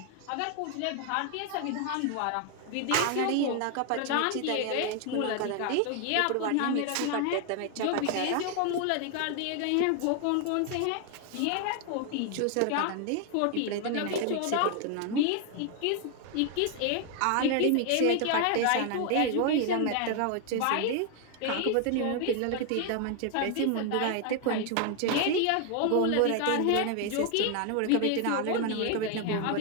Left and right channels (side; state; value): both; different; correlation 0.01